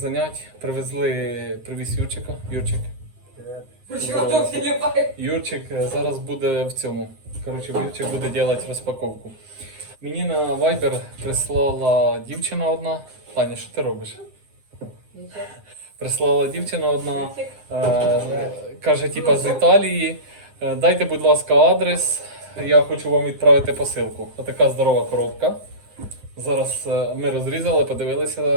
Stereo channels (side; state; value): left; late; 9.7 ms